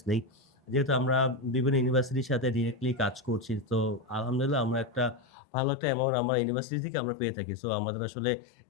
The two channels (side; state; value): right; drops out; at 5.2 s